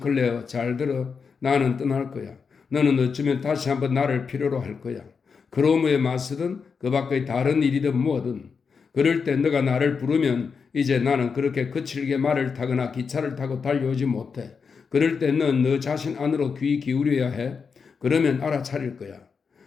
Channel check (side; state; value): right; quieter; 5.6 dB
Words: 잘 들어. 나는 떠날 거야. 너는 어쩌면 다시 한번 나를 필요로 할 거야. 크로머에 맞서든 그 밖의 다른 일이든 뭐든. 그럴 때 너가 나를 부르면 이제 나는 그렇게 거칠게 말을 타거나 기차를 타고 달려오지 못해. 그럴 때 넌 너 자신 안으로 귀 기울여야 해. 그러면 알아차릴 거야.